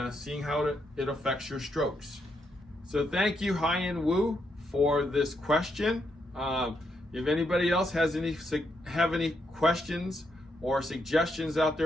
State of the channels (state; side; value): normal; both; correlation 0.79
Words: seeing how it affects your strokes. So thank you, Hyunwoo, for this question. If anybody else have any questions or suggestions out